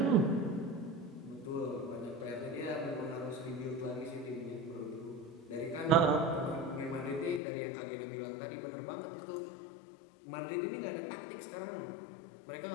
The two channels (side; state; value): right; drops out; at 7.4 s